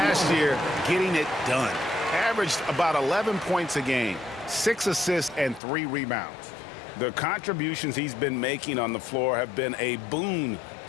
year, getting it done. Averaged about 11 points a game, 6 assists, and 3 rebounds. The contributions he's been making on the floor have been a boon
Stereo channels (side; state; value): right; drops out; at 5.6 s